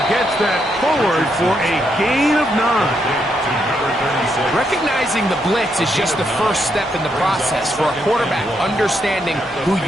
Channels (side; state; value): both; normal; correlation 0.78